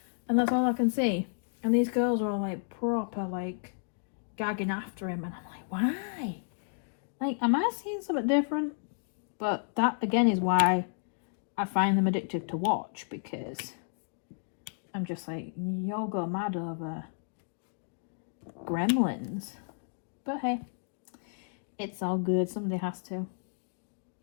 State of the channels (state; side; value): silent; right; digital silence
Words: and that's all I can see. And these girls are all like proper like gagging after him, and I'm like, why? Like, am I seeing something different? But that again is why I find them addictive to watch, because I'm just like, y'all go mad over gremlins. But hey, it's all good. Somebody has to.